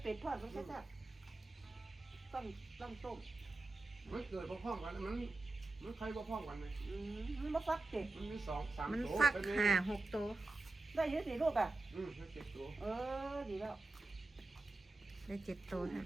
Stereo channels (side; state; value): left; quieter; 3.1 dB